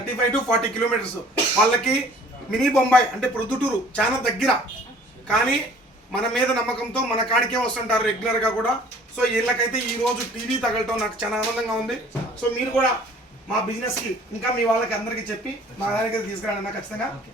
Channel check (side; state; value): both; normal; correlation 0.52